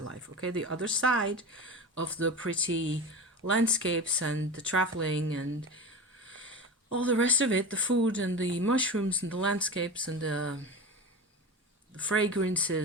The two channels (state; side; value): normal; both; correlation 0.28